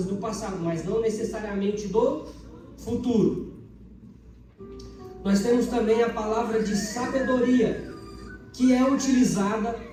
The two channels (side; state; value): both; identical; correlation 1.00